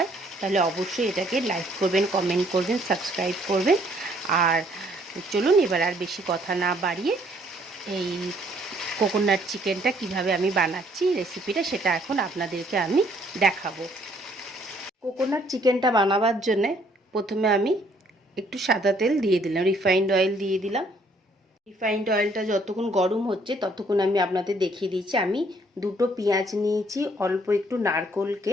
তাহলে অবশ্যই এটাকে লাইক করবেন, কমেন্ট করবেন, সাবস্ক্রাইব করবেন। আর চলুন এবার আর বেশি কথা না বাড়িয়ে এই কোকোনাট চিকেনটা কিভাবে আমি বানাচ্ছি রেসিপিটা, সেটা এখন আপনাদেরকে আমি দেখাবো। কোকোনাট চিকেনটা বানাবার জন্যে প্রথমে আমি একটু সাদা তেল দিয়ে দিলাম, রিফাইন্ড অয়েল দিয়ে দিলাম। রিফাইন্ড অয়েলটা যতক্ষণ গরম হচ্ছে ততক্ষণ আমি আপনাদের দেখিয়ে দিচ্ছি। আমি দুটো পেঁয়াজ নিয়েছি, অল্প একটু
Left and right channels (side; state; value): both; normal; correlation 0.64